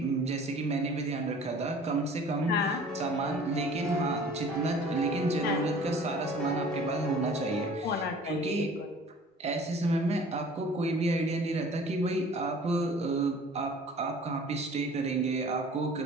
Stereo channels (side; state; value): both; normal; correlation 0.48